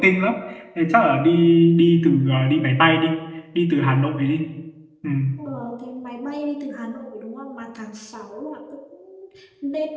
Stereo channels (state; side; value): identical; both; correlation 1.00